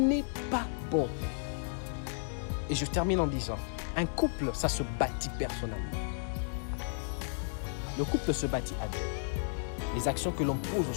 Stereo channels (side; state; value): right; silent; digital silence